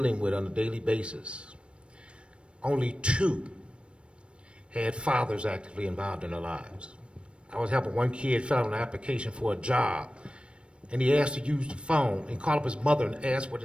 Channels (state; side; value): late; left; 0.058 ms